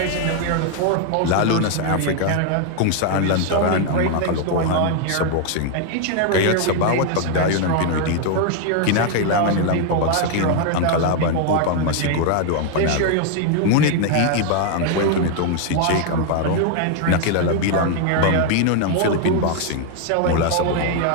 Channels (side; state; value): both; different; correlation 0.00